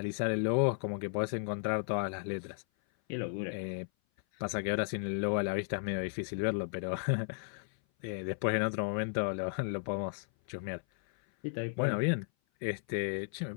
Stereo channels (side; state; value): right; silent; 55 dB below the other